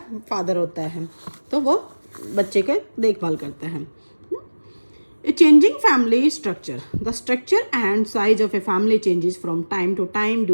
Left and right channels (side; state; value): both; inverted; correlation -1.00